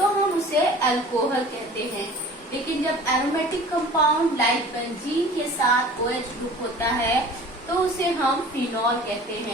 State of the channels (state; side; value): normal; both; correlation 0.44